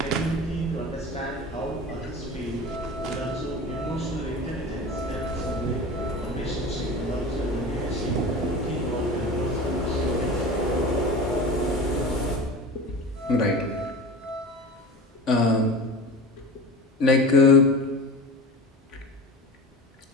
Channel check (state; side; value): normal; both; correlation 0.32